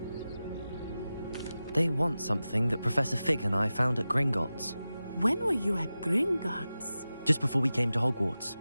They want something that Professor Fig and I found at Gringotts. When were you at Gringotts? Just before we came to Hogwarts.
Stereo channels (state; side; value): inverted; both; correlation -0.94